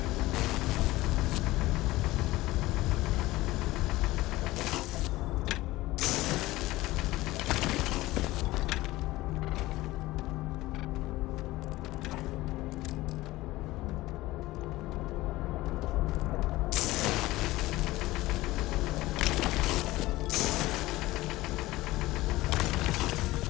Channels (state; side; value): quieter; right; 18.3 dB